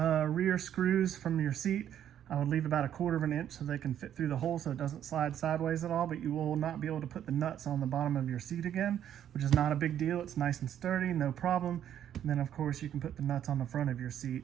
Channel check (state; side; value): quieter; left; 10.2 dB